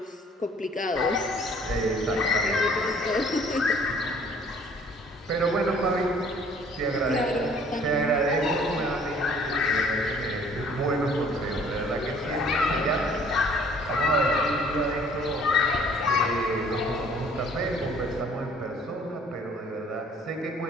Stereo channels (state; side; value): normal; both; correlation 0.56